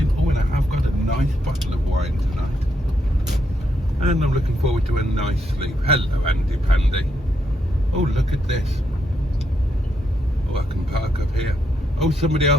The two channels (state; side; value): normal; both; correlation 0.79